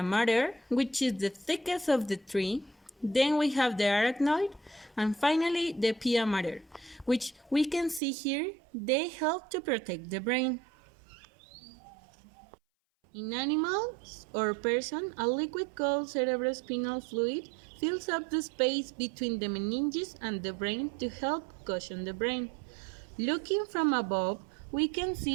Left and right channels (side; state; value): left; drops out; at 8.0 s